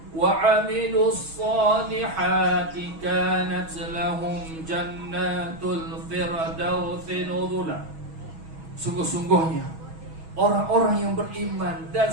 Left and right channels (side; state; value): left; late; 6.2 ms